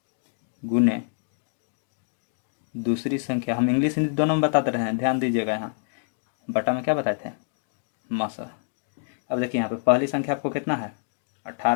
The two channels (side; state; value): right; silent; digital silence